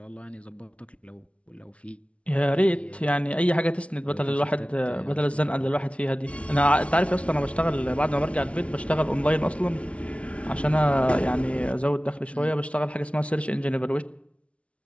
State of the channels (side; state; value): right; late; 0.062 ms